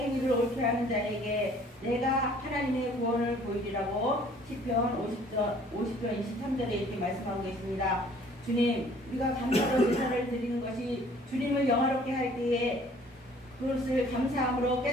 옳게 하는 자에게 내가 하나님의 구원을 보이리라고 시편 50편 23절에 이렇게 말씀하고 계십니다. 주님, 우리가 감사로 제사를 드리는 것이 주님을 영화롭게 할 때에 그것을 감사함으로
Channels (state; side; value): normal; both; correlation 0.56